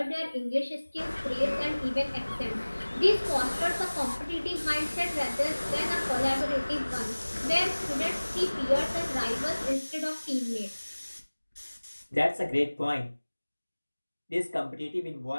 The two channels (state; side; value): inverted; both; correlation -1.00